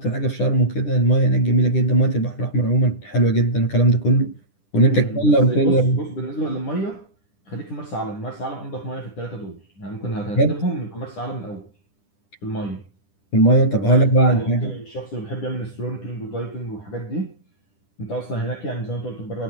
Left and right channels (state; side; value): late; right; 10 ms